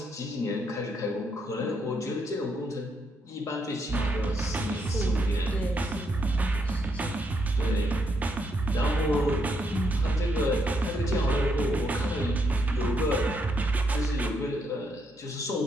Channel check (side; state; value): both; normal; correlation 0.77